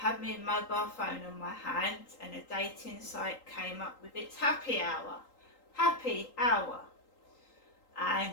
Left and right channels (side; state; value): right; late; 3.8 ms